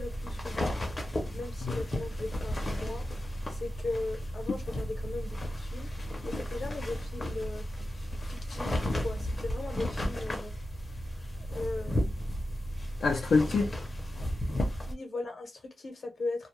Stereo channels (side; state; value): both; normal; correlation 0.92